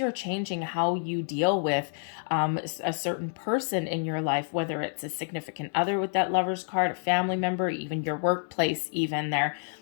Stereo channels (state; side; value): silent; right; 59 dB below the other